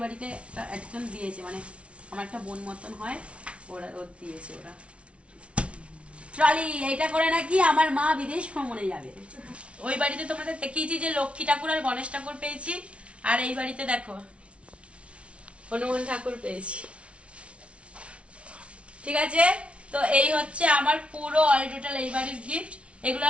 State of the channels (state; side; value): late; left; 0.061 ms